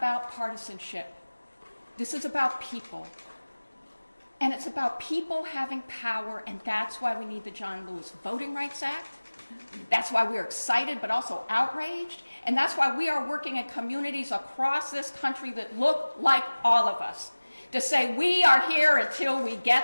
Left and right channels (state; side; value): inverted; both; correlation -1.00